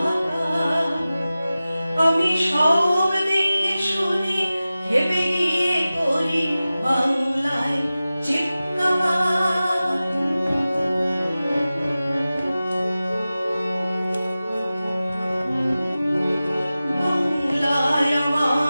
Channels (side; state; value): both; inverted; correlation -0.96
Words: আমি সব দেখে শুনি ভেবে গিয়ে করি বাংলায় চিৎকার। বাংলায়